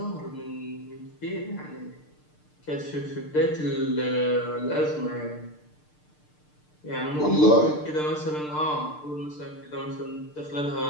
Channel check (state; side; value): late; right; 6.7 ms